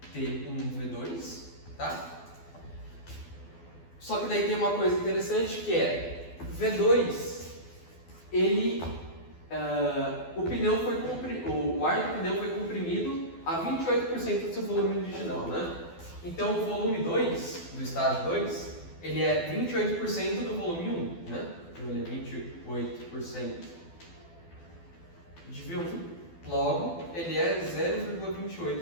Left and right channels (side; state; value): right; late; 12 ms